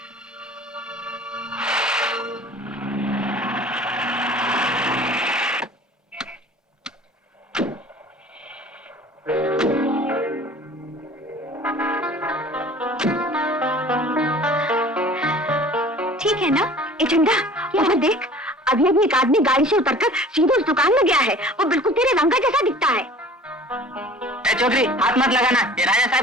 ठीक है ना? ए चंदा, यहाँ देख, अभी अभी एक आदमी गाड़ी से उतरकर सीधे उस दुकान में गया है। वो बिल्कुल तेरे रंगा जैसा दिखता है। चौधरी, हाथ मत लगाना, ये राजा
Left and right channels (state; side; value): normal; both; correlation 0.46